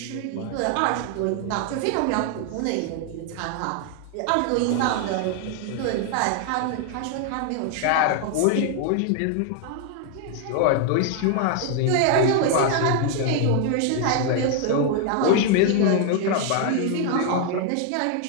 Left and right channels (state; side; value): different; both; correlation 0.00